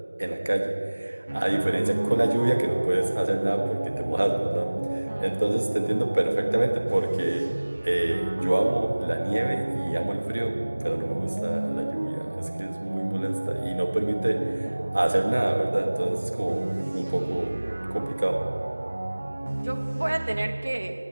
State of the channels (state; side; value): inverted; both; correlation -1.00